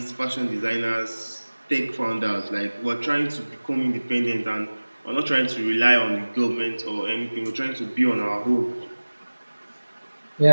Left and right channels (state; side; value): inverted; both; correlation -1.00